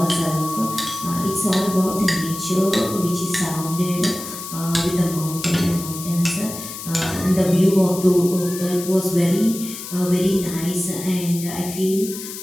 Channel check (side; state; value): left; noise; hiss, 10 dB below the sound